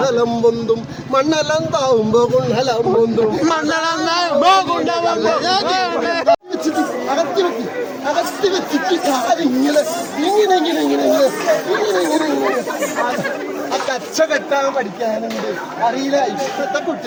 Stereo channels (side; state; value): both; identical; correlation 1.00